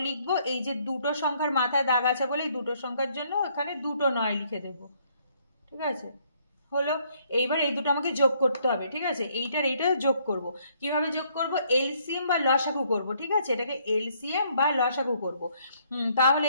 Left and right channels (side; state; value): both; inverted; correlation -0.67